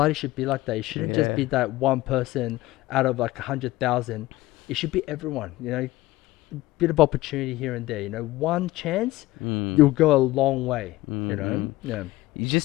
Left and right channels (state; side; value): quieter; right; 18.1 dB